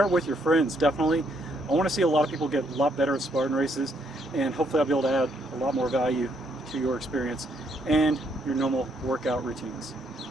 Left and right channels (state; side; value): normal; both; correlation 0.72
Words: it with your friends, definitely. I want to see a lot of people get a lot better at Spartan races, and hopefully I'll be able to add a lot more value to your experience and your normal workout routines.